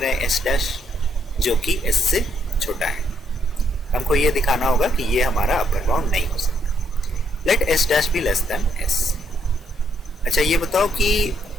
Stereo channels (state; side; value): normal; both; correlation 0.73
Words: हैं S डैश जो कि S से छोटा है. हमको ये दिखाना होगा कि ये हमारा अपर बाउंड नहीं हो सकता. Let S dash be less than S. अच्छा, ये बताओ कि